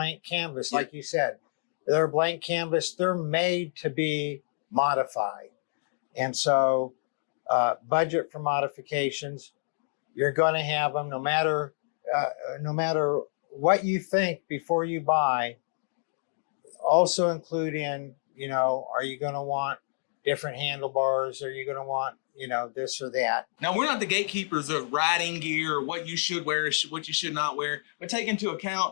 canvas, like you said. They're a blank canvas. They're made to be modified. And so budget for modifications, you're going to have them no matter what you think before you buy. Also include in, are you going to want different handlebars? Are you going to want, this or that? Now, we're not the gatekeepers of riding gear or what you should wear, what you should not wear, but take into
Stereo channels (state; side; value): silent; right; digital silence